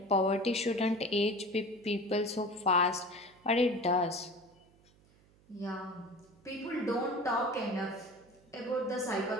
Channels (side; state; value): right; noise; hum, 29 dB below the sound